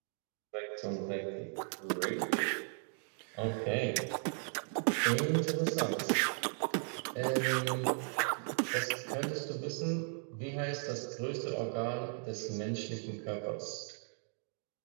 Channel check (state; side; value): silent; left; 53 dB below the other